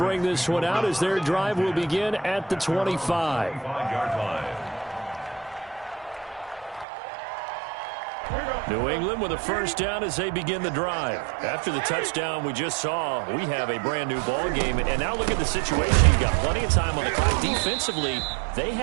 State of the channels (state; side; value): drops out; left; at 6.9 s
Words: this one out as their drive will begin at the 25. 5-yard line. New England with a 1st down as they begin the drive. After the touchdown we just saw, we have a brand new ball game. And now look at the situation. You've got plenty of time on the clock. Defensively, they